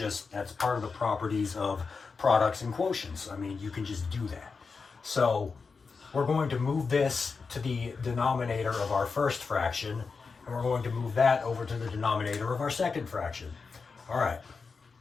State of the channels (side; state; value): right; quieter; 4.8 dB